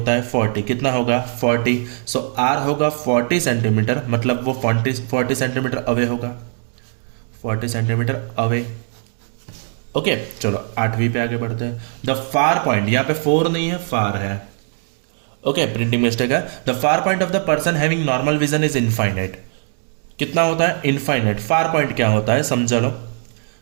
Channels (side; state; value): left; silent; 66 dB below the other